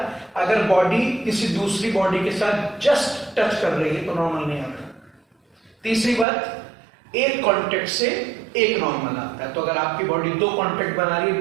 अगर बॉडी किसी दूसरी बॉडी के साथ जस्ट टच कर रही है तो नॉर्मल नहीं आता। तीसरी बात, एक कांटेक्ट से एक नॉर्मल आता है। तो अगर आपकी बॉडी दो कांटेक्ट बना रही है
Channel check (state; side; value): drops out; left; at 6.2 s